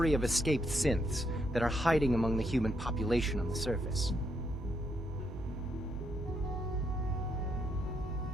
of escaped synths that are hiding among the human population on the surface.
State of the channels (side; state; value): both; normal; correlation 0.77